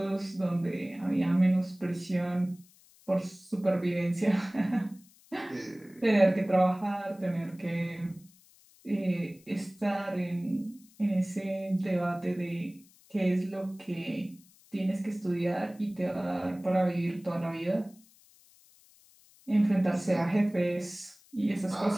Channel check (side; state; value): left; noise; hiss, 28 dB below the sound